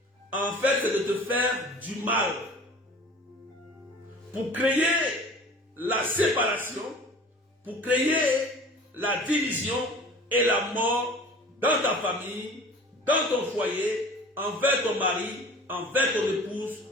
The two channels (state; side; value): normal; both; correlation 0.43